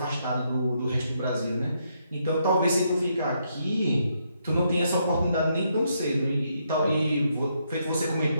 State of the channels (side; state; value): both; inverted; correlation -0.76